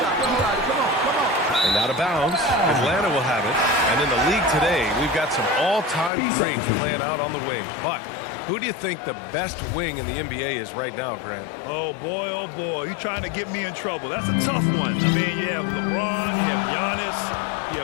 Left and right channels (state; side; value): drops out; right; at 6.1 s